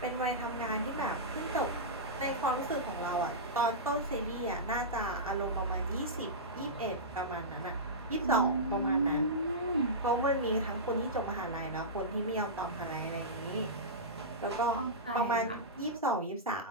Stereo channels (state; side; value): normal; both; correlation -0.15